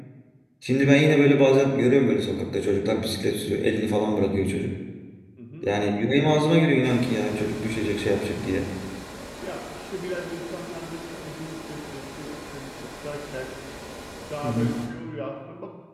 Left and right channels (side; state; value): both; identical; correlation 1.00